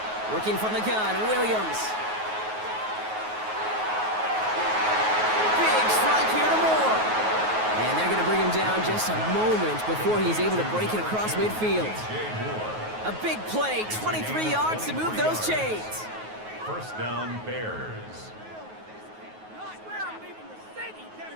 Working from the gun, Williams. Big strike here to Moore. And they're going to bring him down just a moment before he's able to break it across midfield. A big play, 23 yards to move those chains. First down, Bears. I swear I'm leaving the city.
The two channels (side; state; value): left; late; 9.4 ms